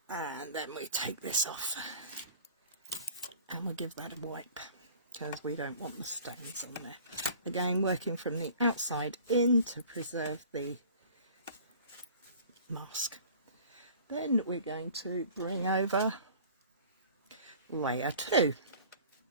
And then we take this off and we'll give that a wipe because we don't want the stains on there. Again, working from the outside in to preserve the mask. Then we're going to bring over layer 2.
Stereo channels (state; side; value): inverted; both; correlation -0.47